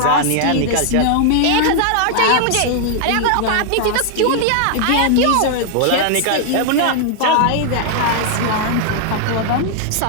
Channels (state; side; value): different; both; correlation 0.00